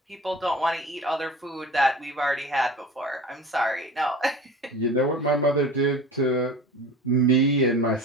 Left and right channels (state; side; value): normal; both; correlation 0.37